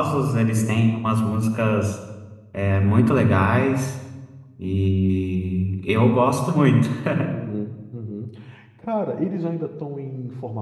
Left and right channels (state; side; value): identical; both; correlation 1.00